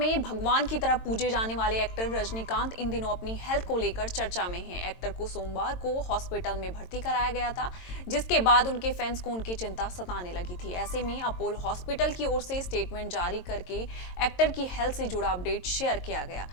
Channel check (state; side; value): late; right; 22 ms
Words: भगवान की तरह पूजे जाने वाले एक्टर रजनीकांत इन दिनों अपनी हेल्थ को लेकर चर्चा में हैं। एक्टर को सोमवार को हॉस्पिटल में भर्ती कराया गया था, जिसके बाद उनके फैंस को उनकी चिंता सताने लगी थी। ऐसे में अपोलो हॉस्पिटल की ओर से स्टेटमेंट जारी करके एक्टर की हेल्थ से जुड़ा अपडेट शेयर किया गया,